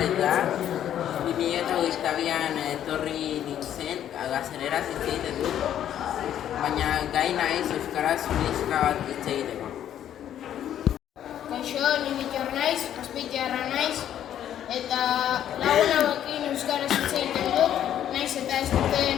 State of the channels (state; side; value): quieter; right; 10.6 dB